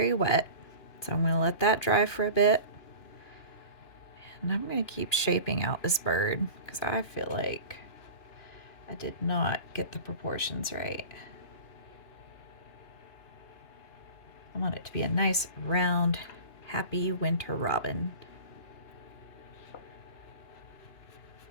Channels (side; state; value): right; late; 2.9 ms